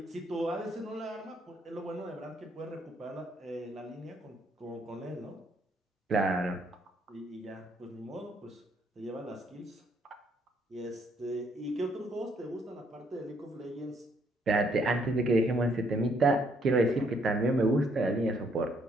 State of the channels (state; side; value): normal; both; correlation 0.70